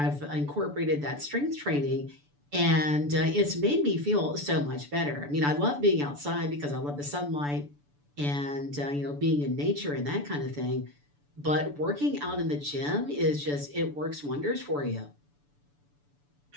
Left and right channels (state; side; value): late; left; 6.9 ms